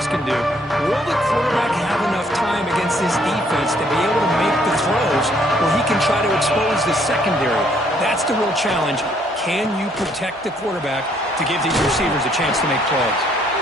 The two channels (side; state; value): both; normal; correlation 0.66